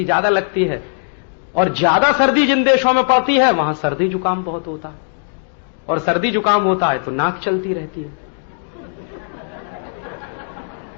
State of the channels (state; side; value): silent; right; 67 dB below the other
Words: ज्यादा लगती है, और ज्यादा सर्दी जिन देशों में पड़ती है वहां सर्दी जुकाम बहुत होता है, और सर्दी जुकाम होता है तो नाक चलती रहती है।